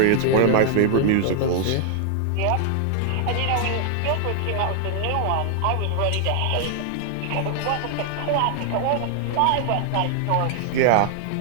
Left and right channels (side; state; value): both; different; correlation 0.00